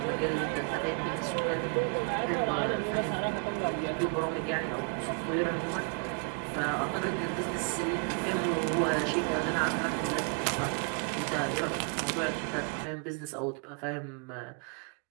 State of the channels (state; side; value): quieter; left; 39.0 dB